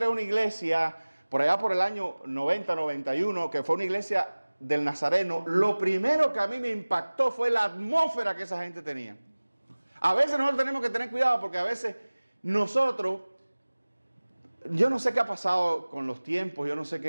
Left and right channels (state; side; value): inverted; both; correlation -1.00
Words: a una iglesia, por allá por el año 90, 91, que fue una iglesia del Nazareno, lo primero que a mí me impactó fue la atmósfera que esa gente tenía. A veces nosotros tenemos que tener cuidado porque a veces nosotros, yo no sé qué ha pasado con los tiempos, yo no sé